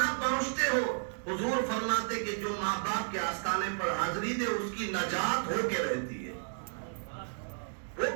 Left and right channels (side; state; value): left; silent; digital silence